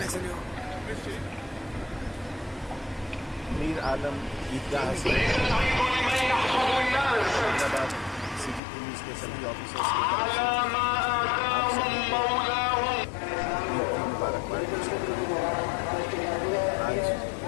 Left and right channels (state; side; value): drops out; right; at 8.6 s